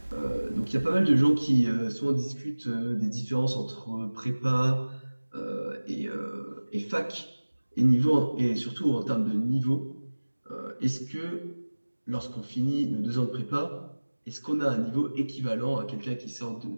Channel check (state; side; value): inverted; both; correlation -1.00